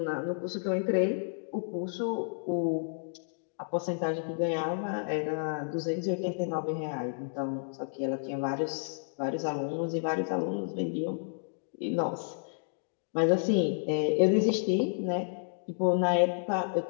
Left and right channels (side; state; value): right; silent; digital silence